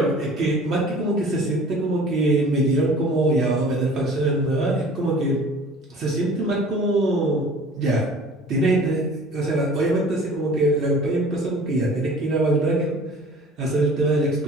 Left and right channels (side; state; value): both; normal; correlation 0.46